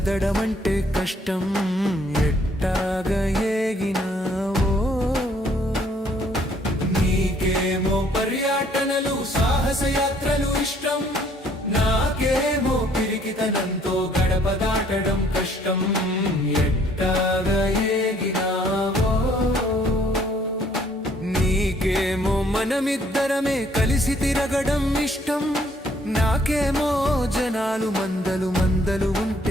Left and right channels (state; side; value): normal; both; correlation 0.63